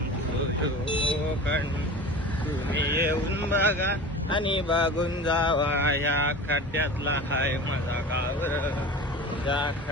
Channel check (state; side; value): normal; both; correlation 0.34